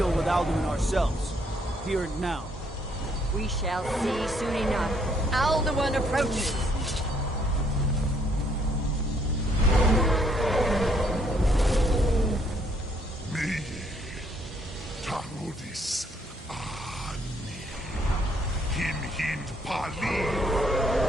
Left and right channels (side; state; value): both; normal; correlation 0.68